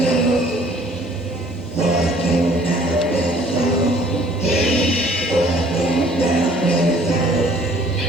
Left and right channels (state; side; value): normal; both; correlation 0.56